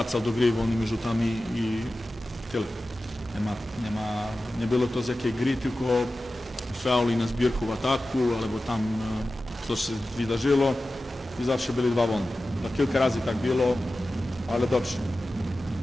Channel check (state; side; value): normal; both; correlation 0.95